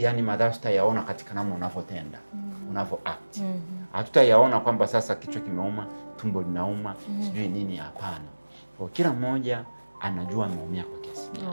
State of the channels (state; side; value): inverted; both; correlation -1.00